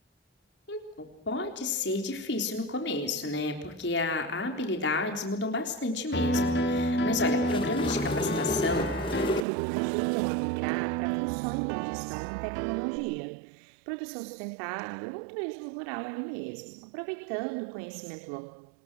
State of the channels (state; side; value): drops out; left; at 9.5 s